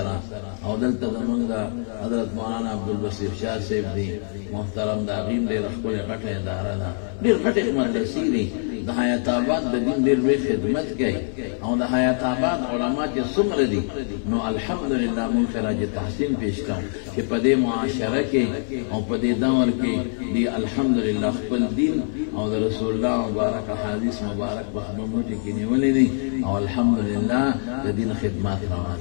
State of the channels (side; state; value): right; silent; 60 dB below the other